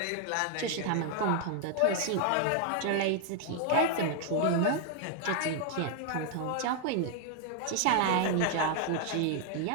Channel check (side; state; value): both; different; correlation 0.00